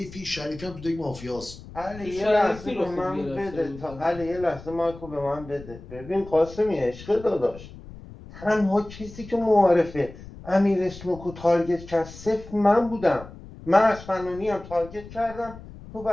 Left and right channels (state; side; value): noise; left; rumble, 16 dB below the sound